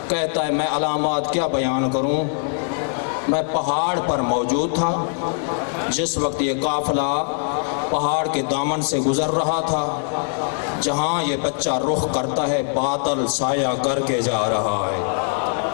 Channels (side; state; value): right; silent; 64 dB below the other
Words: کہتا ہے میں علامات کیا بیان کروں، میں پہاڑ پر موجود تھا جس وقت یہ قافلہ پہاڑ کے دامن سے گزر رہا تھا، جہاں یہ بچہ رخ کرتا ہے بادل سایہ کر کے جا رہا ہے۔